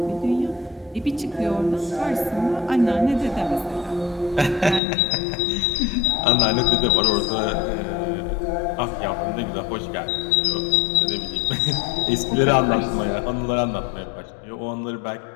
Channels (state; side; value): drops out; right; at 4.8 s